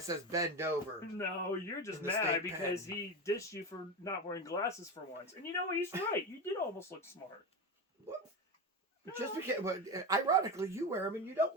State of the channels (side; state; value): both; normal; correlation 0.19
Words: says bend over. No, you're just In the mad state because pen. he dissed you for not wearing glasses for once. And you know, he's right. You did almost look smart. What? Just because, but ironically, you wear them and you